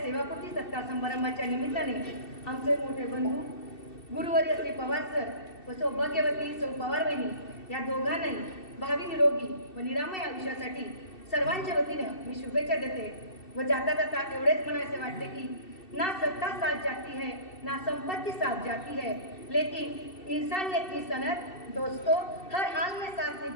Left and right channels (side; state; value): right; late; 2.7 ms